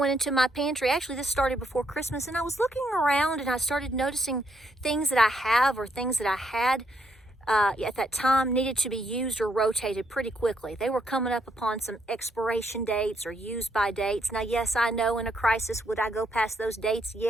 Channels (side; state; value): both; normal; correlation 0.75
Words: into my pantry. Actually, this started before Christmas, and I was looking around and I started noticing things that I have or things that I had at that time needed to be used or rotated pretty quickly. They were coming up upon some expiration dates or use by dates. Now, yes, I know in a crisis, would I go past those dates?